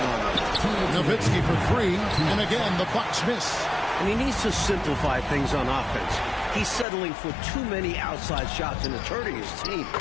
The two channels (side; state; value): right; drops out; at 6.9 s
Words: them. Nowitzki for 3, and again, the Bucks miss. And he needs to simplify things on offense. He's settling for too many outside shots and it's hurting his team.